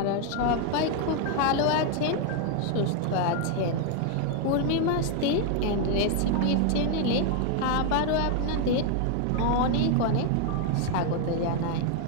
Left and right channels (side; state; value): both; different; correlation 0.00